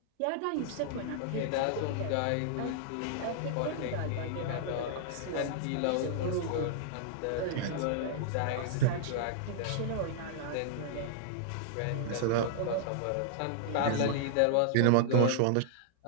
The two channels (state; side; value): different; both; correlation -0.01